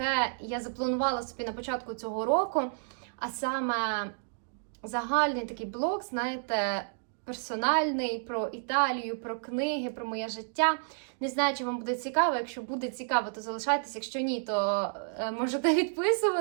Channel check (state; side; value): silent; left; digital silence